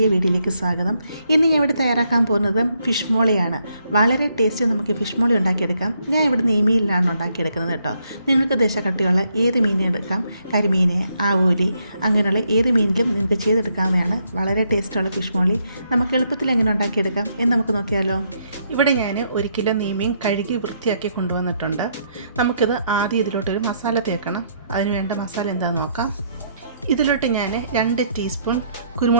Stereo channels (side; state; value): both; inverted; correlation -0.73